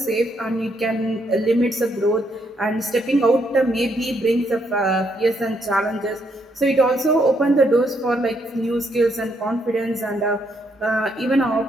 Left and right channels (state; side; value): normal; both; correlation 0.74